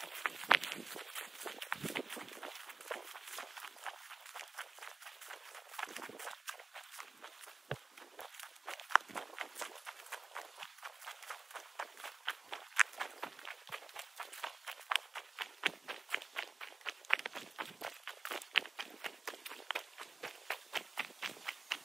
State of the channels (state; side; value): quieter; left; 3.7 dB